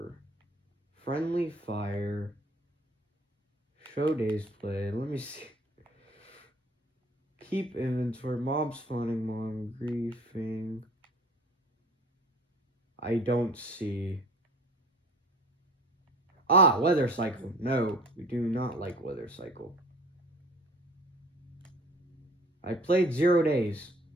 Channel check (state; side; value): normal; both; correlation 0.46